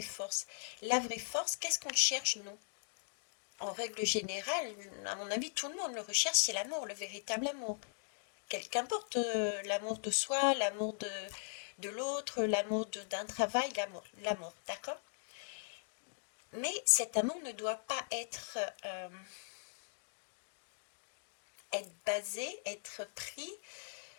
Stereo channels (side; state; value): right; silent; digital silence